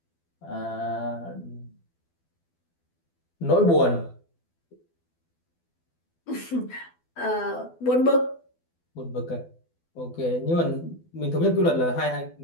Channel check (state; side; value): late; right; 12 ms